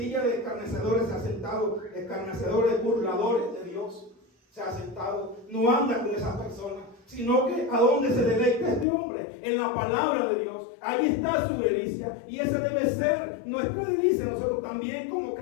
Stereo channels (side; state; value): right; drops out; at 8.8 s